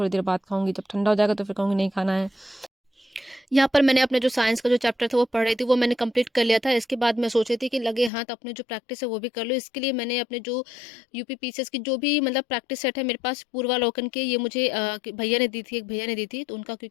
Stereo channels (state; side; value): drops out; right; at 8.1 s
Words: देर बाद खाऊंगी, जब ठंडा हो जाएगा तो फिर कहूँगी नहीं खाना है। यहाँ पर मैंने अपने जो साइंस का जो चैप्टर था वो पढ़ रही थी, वो मैंने कंप्लीट कर लिया था। इसके बाद मैं सोच रही थी कि लगे हाथ अपने जो प्रैक्टिस है वो भी कर लो। इसके लिए मैंने अपने जो यूपी पीसीएस की जो भी मतलब प्रैक्टिस सेट है मेरे पास पूर्वालोकन के, ये मुझे भैया ने दी थी, एक भैया ने दी थी, तो उनका